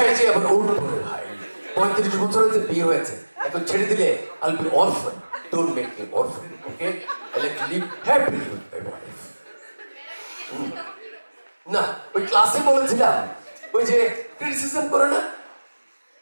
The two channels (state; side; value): inverted; both; correlation -1.00